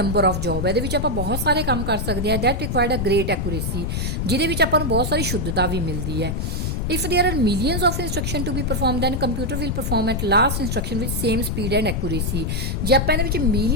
of job. ਇਹਦੇ ਵਿੱਚ ਆਪਾਂ ਬਹੁਤ ਸਾਰੇ ਕੰਮ ਕਰ ਸਕਦੇ ਹਾਂ। That required a great accuracy, ਜਿਹਦੇ ਵਿੱਚ ਆਪਾਂ ਨੂੰ ਬਹੁਤ ਸਾਰੀ ਸ਼ੁੱਧਤਾ ਵੀ ਮਿਲਦੀ ਹੈ। If there are millions of instruction to be performed, then computer will perform at last instruction with same speed and accuracy। ਜੇ ਆਪਾਂ ਇਹਦੇ ਵਿੱਚ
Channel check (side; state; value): left; noise; rumble, 1 dB below the sound